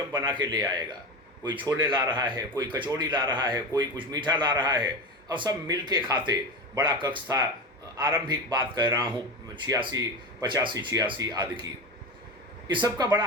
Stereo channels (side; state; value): both; normal; correlation 0.23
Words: बना के ले आएगा। कोई छोले ला रहा है, कोई कचौड़ी ला रहा है, कोई कुछ मीठा ला रहा है, और सब मिल के खाते। बड़ा कक्ष था। आरंभिक बात कह रहा हूँ 85 आदि की। इस सब का बड़ा